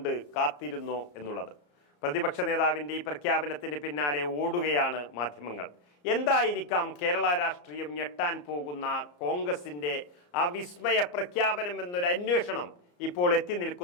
കാത്തിരുന്നോ എന്നുള്ളത്. പ്രതിപക്ഷ നേതാവിന്റെ ഈ പ്രഖ്യാപനത്തിന് പിന്നാലെ ഓടുകയാണ് മാധ്യമങ്ങൾ. എന്തായിരിക്കാം കേരള രാഷ്ട്രീയം ഞെട്ടാൻ പോകുന്ന കോൺഗ്രസിന്റെ ആ വിസ്മയ പ്രഖ്യാപനം എന്നൊരു അന്വേഷണം ഇപ്പോൾ എത്തി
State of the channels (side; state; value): right; late; 34 ms